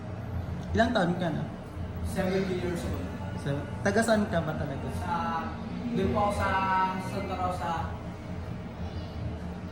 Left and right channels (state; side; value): identical; both; correlation 1.00